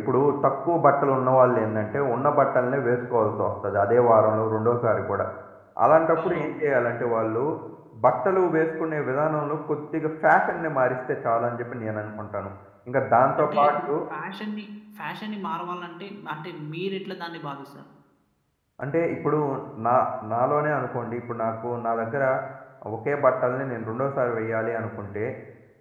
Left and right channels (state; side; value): identical; both; correlation 1.00